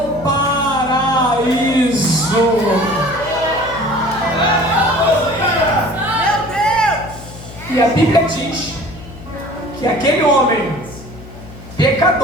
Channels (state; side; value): noise; left; hum, 16 dB below the sound